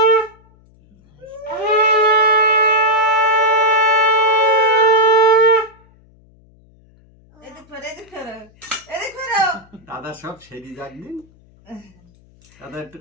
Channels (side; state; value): left; noise; hum, 30 dB below the sound